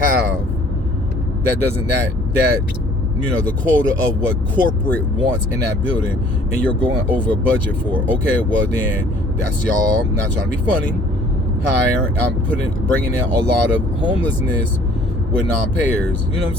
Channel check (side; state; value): both; normal; correlation 0.56